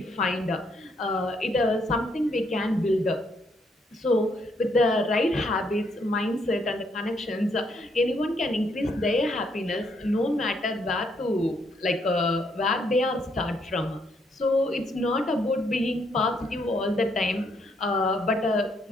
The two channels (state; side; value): normal; both; correlation 0.73